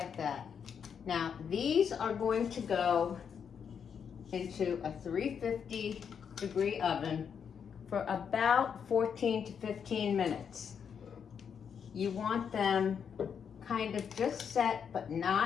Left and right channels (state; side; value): quieter; right; 7.2 dB